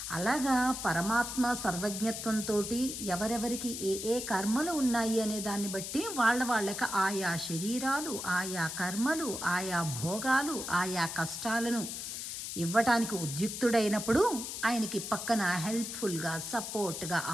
అలాగా పరమాత్మ సర్వజ్ఞత్వంతో ఎవరెవరికి ఏ కర్మలు ఉన్నాయి అనే దాన్ని బట్టి వాళ్ళకి ఆయా శరీరాలు, ఆయా కర్మలు, ఆయా భోగాలు, ఆయా కష్టాలను ఇవ్వటానికి ఉద్యుక్తుడైనప్పుడు ఆయనకి పక్కన హెల్ప్ఫుల్గా, సపోర్ట్గా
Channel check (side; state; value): left; noise; hiss, 6 dB below the sound